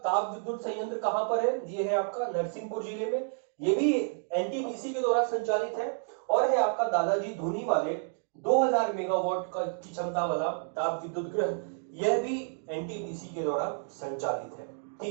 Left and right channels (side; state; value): left; silent; digital silence